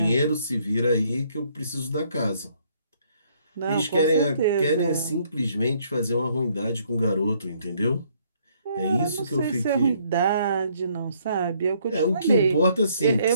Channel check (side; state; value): both; inverted; correlation -0.66